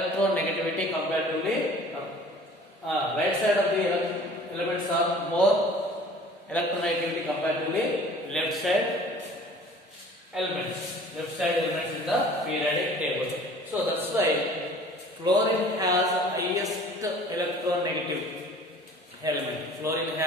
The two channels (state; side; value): normal; both; correlation 0.48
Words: comparatively. Right side of the elements are more electronegativity comparatively left side elements in the periodic table. So that's why fluorine has highest electronegative element. Fluorine